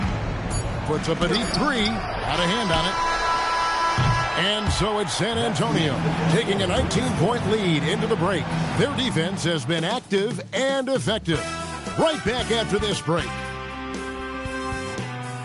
Puts up a deep 3. Out of hand on it. And so it's San Antonio taking a 19-point lead into the break. Their defense has been active and effective. Right back after this break.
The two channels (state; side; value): identical; both; correlation 1.00